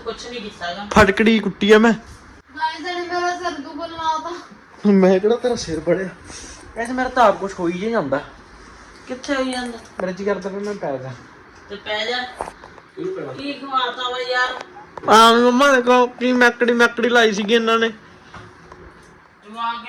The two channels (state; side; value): identical; both; correlation 1.00